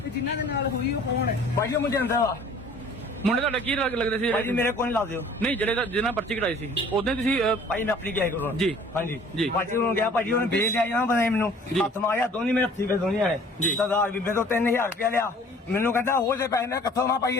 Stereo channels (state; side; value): normal; both; correlation 0.51